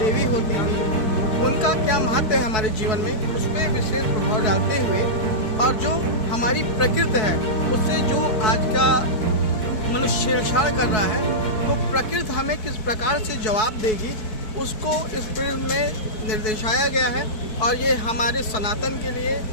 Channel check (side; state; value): right; late; 4.6 ms